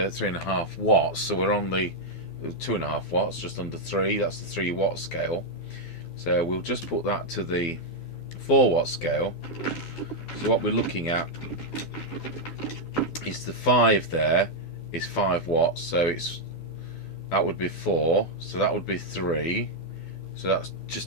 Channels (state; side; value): late; right; 12 ms